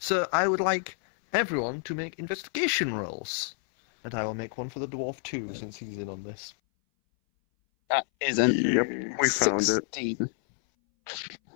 I would like everyone to make investigation rolls. And I will make one for the dwarf too, since he's in on this. That is an Yep, we found it. 16.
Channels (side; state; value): right; silent; 59 dB below the other